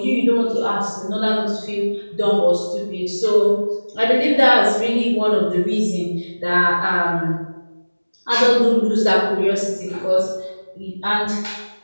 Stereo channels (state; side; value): inverted; both; correlation -1.00